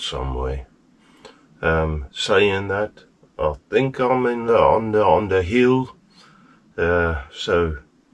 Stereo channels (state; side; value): identical; both; correlation 1.00